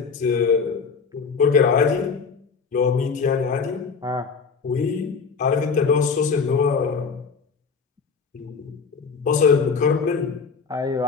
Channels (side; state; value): right; quieter; 5.3 dB